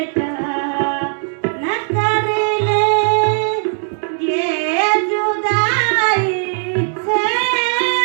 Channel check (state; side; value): silent; left; 67 dB below the other